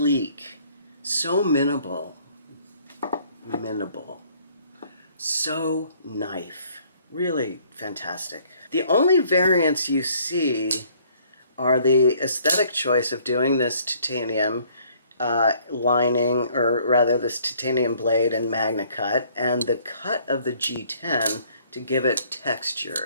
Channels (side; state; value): both; inverted; correlation -0.61